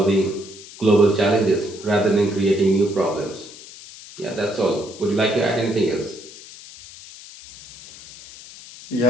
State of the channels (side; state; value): left; noise; hiss, 18 dB below the sound